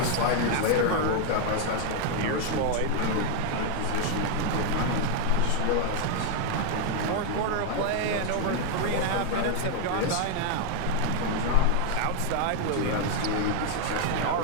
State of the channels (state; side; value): different; both; correlation 0.01